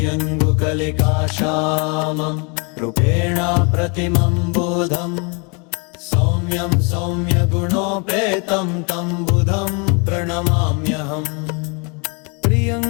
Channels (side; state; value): right; quieter; 33.9 dB